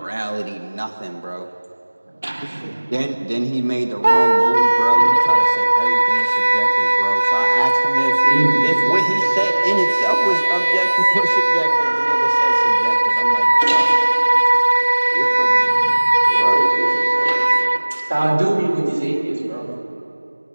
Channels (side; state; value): both; inverted; correlation -1.00